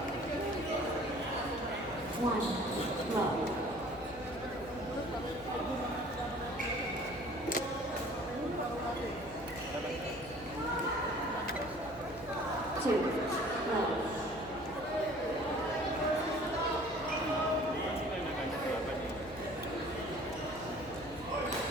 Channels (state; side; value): noise; left; hum, 18 dB below the sound